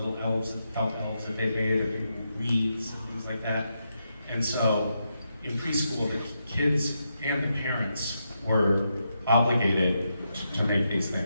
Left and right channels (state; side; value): inverted; both; correlation -0.83